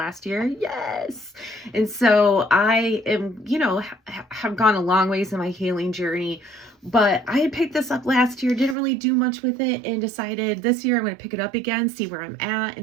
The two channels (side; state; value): left; drops out; at 8.8 s